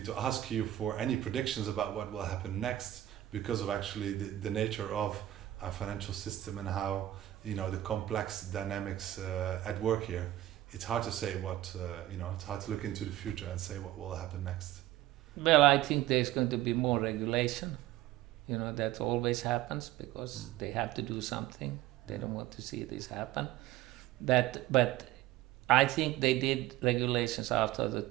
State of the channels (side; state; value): left; quieter; 14.4 dB